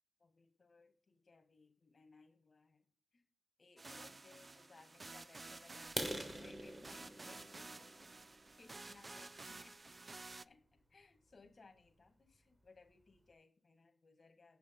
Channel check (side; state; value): both; normal; correlation 0.96